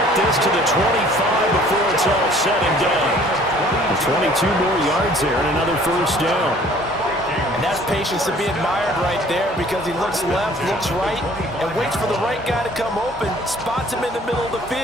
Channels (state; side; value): normal; both; correlation 0.54